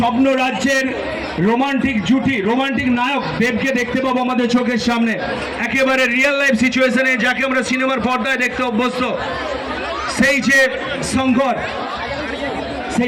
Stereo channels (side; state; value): both; identical; correlation 1.00